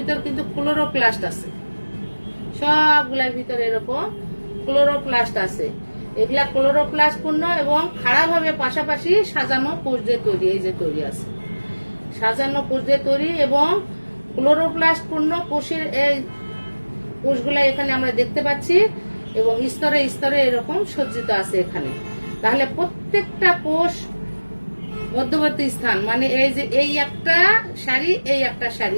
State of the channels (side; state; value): both; inverted; correlation -1.00